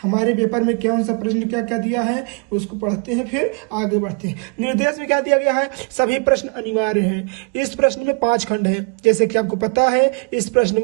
हमारे पेपर में कौन सा प्रश्न क्या क्या दिया है, उसको पढ़ते हैं फिर आगे बढ़ते हैं। निर्देश में क्या दिया गया है, सभी प्रश्न अनिवार्य हैं। इस प्रश्न में 5 खंड है। जैसे कि आपको पता है इस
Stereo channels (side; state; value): left; quieter; 36.5 dB